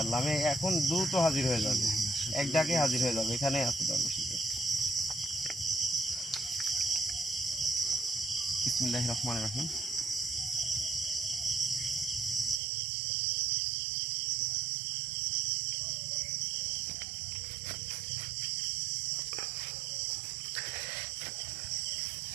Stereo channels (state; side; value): drops out; left; at 12.6 s